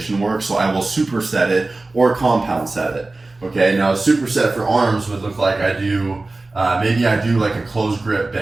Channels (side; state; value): left; quieter; 3.2 dB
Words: work, so I will superset it or compound set it. Okay, now a superset for arms would look like maybe I do like a closed grip